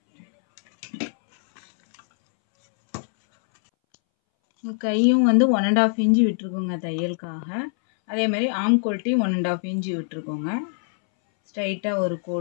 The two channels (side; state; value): right; silent; 62 dB below the other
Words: கையும் வந்து 1.5 இன்ச்சு விட்டுருக்கோங்க தையலுக்காக. அதே மாதிரி ஆம் கோல்ட்டி 1.5 இன்ச்சு விட்டுருக்கோங்க. ஸ்ட்ரைட்டாக ஒரு